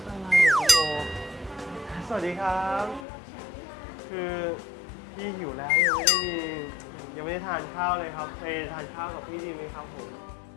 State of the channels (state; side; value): drops out; right; at 3.1 s